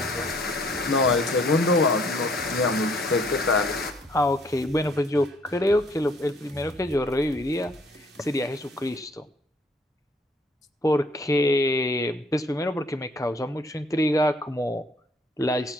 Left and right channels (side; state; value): both; normal; correlation 0.61